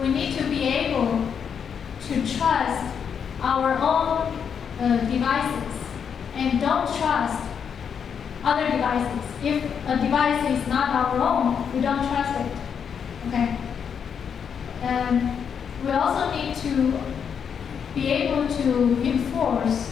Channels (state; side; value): quieter; right; 7.3 dB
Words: we need to be able to trust our own devices and don't trust other devices. If a device is not our own, we don't trust it. Okay? And we also need to be able to enforce